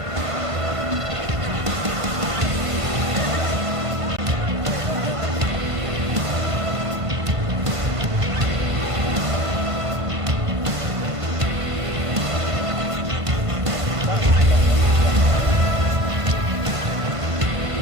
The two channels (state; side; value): late; left; 1.5 ms